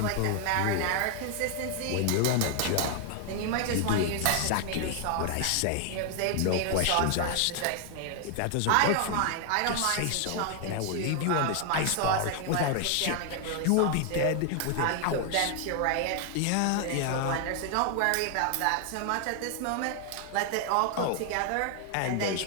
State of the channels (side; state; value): both; different; correlation 0.00